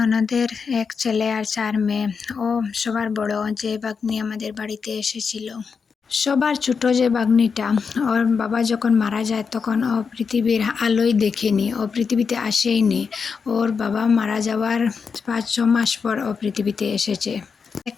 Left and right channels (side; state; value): right; quieter; 5.6 dB